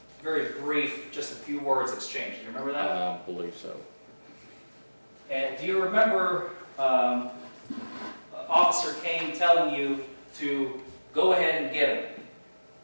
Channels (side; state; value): both; inverted; correlation -1.00